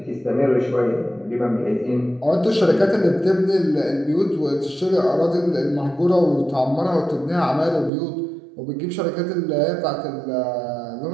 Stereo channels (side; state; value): left; drops out; at 7.9 s